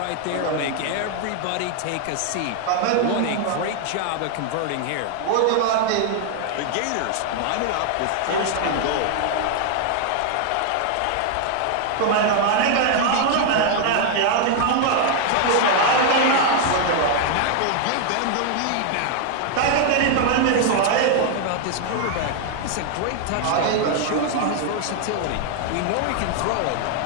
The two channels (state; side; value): different; both; correlation 0.00